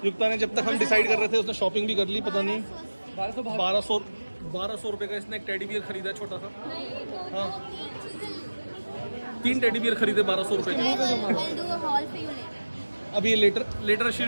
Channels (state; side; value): inverted; both; correlation -1.00